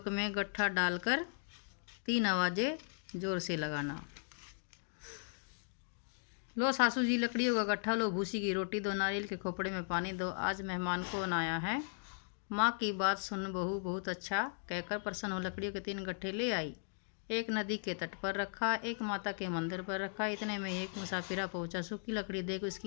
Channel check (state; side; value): silent; right; digital silence